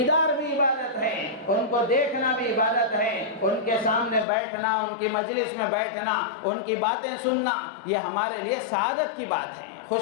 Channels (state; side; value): drops out; right; at 4.2 s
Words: بھی عبادت ہے، ان کو دیکھنا بھی عبادت ہے، ان کے سامنے بیٹھنا، ان کی مجلس میں بیٹھنا، ان کی باتیں سننا، یہ ہمارے لیے سعادت کی بات ہے،